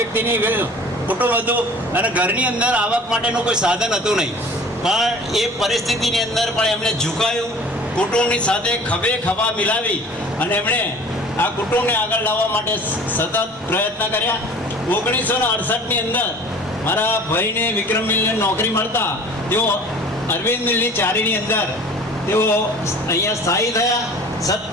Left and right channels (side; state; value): both; normal; correlation 0.45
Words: કુટુંબ હતું અને ઘરની અંદર આવક માટેનું કોઈ સાધન હતું નહીં. પણ એ પરિસ્થિતિની અંદર પણ એમણે ઝુકાયું, કુટુંબની સાથે ખભે ખભા મિલાવી અને એમણે આ કુટુંબને આગળ લાવવા માટે સતત પ્રયત્ન કર્યા. 1968ની અંદર મારા ભાઈને વિક્રમ મિલને નોકરી મળતા તેઓ અરવિંદ મિલની ચારીની અંદર તેઓ અહીંયા સ્થાયી થયા.